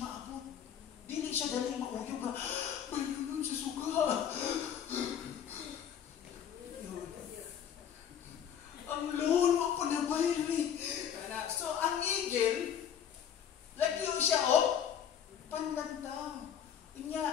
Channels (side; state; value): right; quieter; 8.8 dB